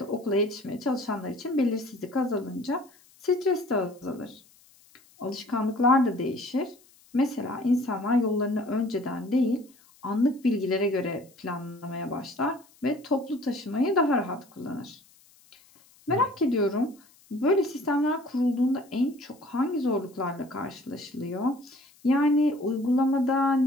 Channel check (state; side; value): noise; left; hiss, 29 dB below the sound